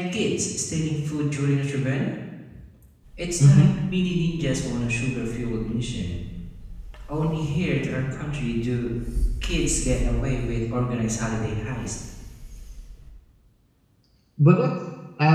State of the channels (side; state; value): both; identical; correlation 1.00